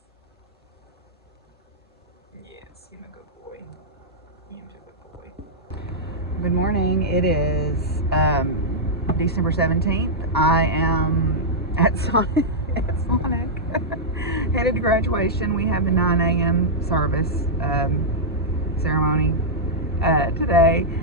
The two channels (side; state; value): both; normal; correlation -0.08